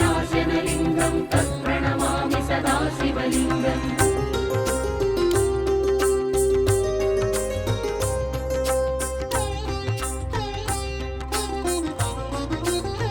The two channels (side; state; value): both; identical; correlation 1.00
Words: तत्प्रणमामि सदा शिवलिङ्गम्